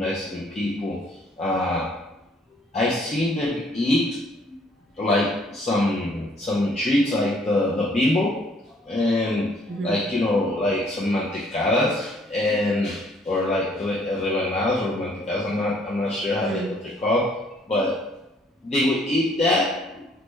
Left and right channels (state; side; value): normal; both; correlation 0.63